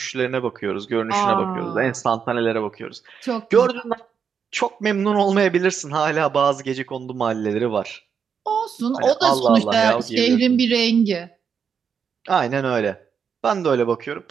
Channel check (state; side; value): quieter; left; 6.8 dB